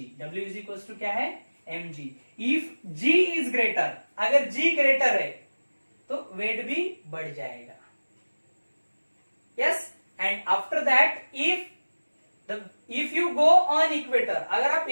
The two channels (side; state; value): both; inverted; correlation -1.00